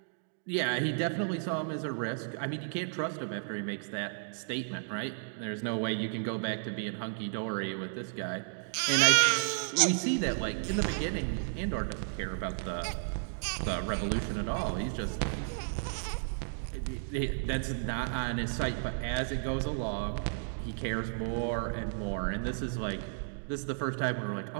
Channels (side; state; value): left; silent; digital silence